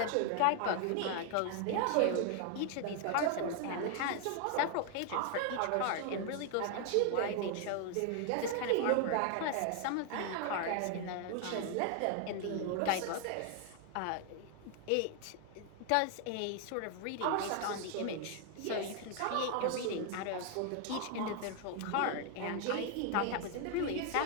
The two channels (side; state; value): both; different; correlation 0.00